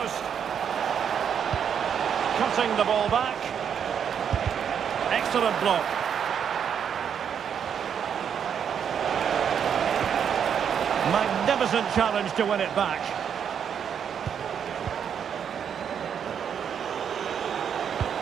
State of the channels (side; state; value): left; quieter; 7.9 dB